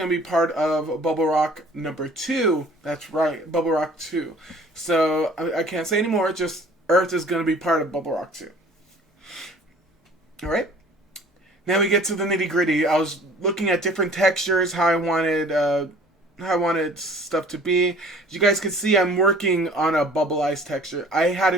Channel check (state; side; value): normal; both; correlation 0.50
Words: to be part of Bubble Rock number 2. That's right, Bubble Rock 2. So, I can't say anymore, just Earth is going to be part of Bubble Rock 2. Alright? Now we get to the nitty gritty. I was looking at different textures, how I wanted stuff to be. As you guys can see, I'm working on a bubble ice texture. I had